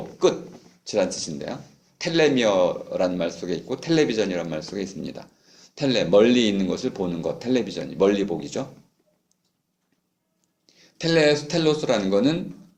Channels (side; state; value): both; identical; correlation 1.00